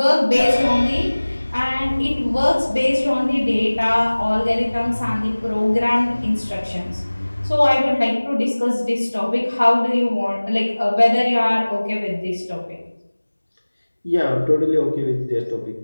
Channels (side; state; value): both; inverted; correlation -1.00